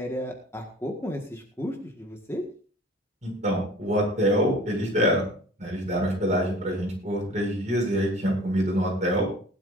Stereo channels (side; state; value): both; normal; correlation 0.46